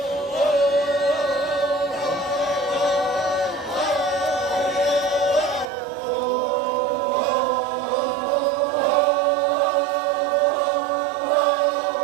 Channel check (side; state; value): left; drops out; at 5.7 s